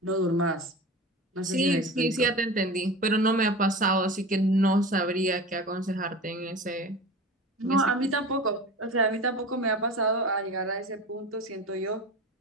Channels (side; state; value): both; normal; correlation 0.32